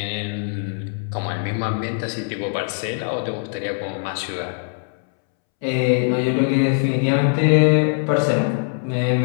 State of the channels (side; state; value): right; silent; 65 dB below the other